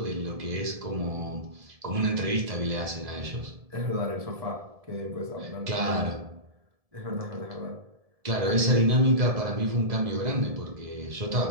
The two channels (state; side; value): late; left; 1.7 ms